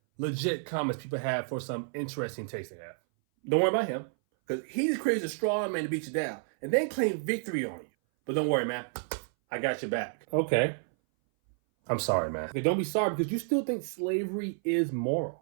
legit comments people have for some interesting taste they have. Don't worry about him, because he just creates a straw man to beat you down and then claim victory on you. But don't worry, man. I got your back. Okay. I'm sorry, man. Okay, don't be sorry, because you still think slavery is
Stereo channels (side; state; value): left; silent; 58 dB below the other